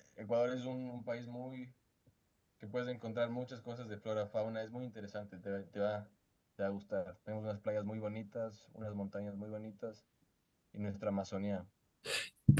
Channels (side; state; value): both; identical; correlation 1.00